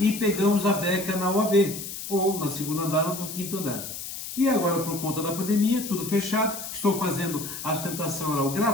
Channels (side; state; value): left; noise; hiss, 8 dB below the sound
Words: pegamos a beca na OAB, ou na segunda andar ou no quinto andar. E agora, por conta da pandemia, tudo fechado, estou fazendo a sustentação oral